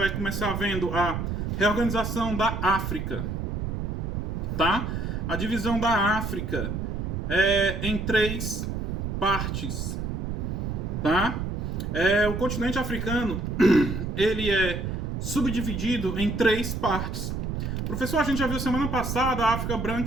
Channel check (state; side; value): noise; right; rumble, 3 dB below the sound